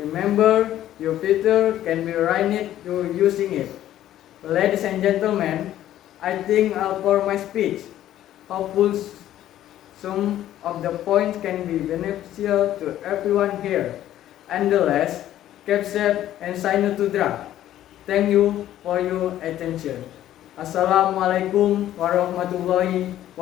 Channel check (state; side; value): quieter; right; 12.6 dB